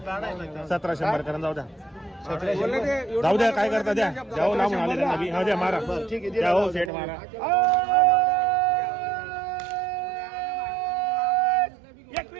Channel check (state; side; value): drops out; left; at 6.9 s